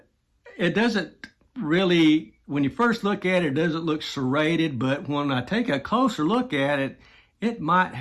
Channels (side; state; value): both; identical; correlation 1.00